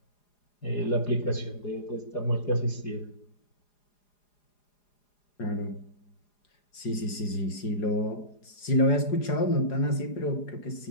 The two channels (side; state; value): right; late; 4.9 ms